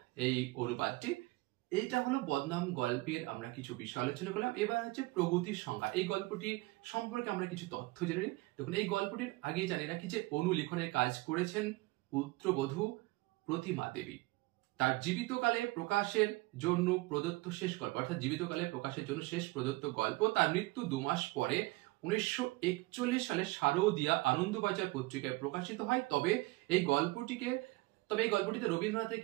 এই অনুবাদটি। এইটা হলো বদনাম গল্পের আমরা কিছু বিষয় আলোচনা করলাম। এবার হচ্ছে প্রগতির সংহার। এই গল্পটি সম্পর্কে আমরা কিছু তথ্য জেনে নিই। দেখুন, এই গল্পটির আগেই জানি রাখি যে অনুলিখনের কাজ করেছেন পুত্রবধূ প্রতিমা দেবী। তার জীবিতকালে প্রকাশের জন্য প্রদত্ত শেষ গল্প, অর্থাৎ জীবিতকালে প্রকাশের জন্য শেষ প্রদত্ত গল্প। তার মৃত্যু 2 মাস পরে 1941 সালে শারদিয়া আনন্দবাজার পত্রিকায় প্রকাশিত হয়। তবে এই গল্পটিতে রবীন্দ্রনাথের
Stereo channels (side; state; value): left; quieter; 21.9 dB